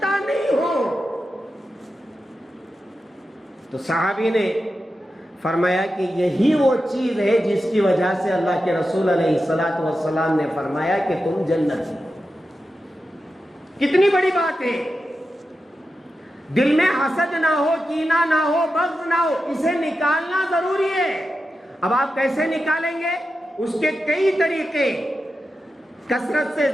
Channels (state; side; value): normal; both; correlation 0.90